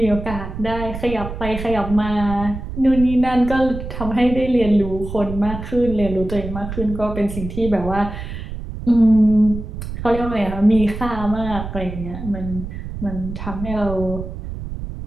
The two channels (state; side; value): noise; right; rumble, 8 dB below the sound